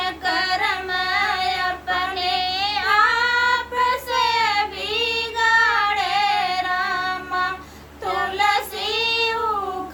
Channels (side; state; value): both; identical; correlation 1.00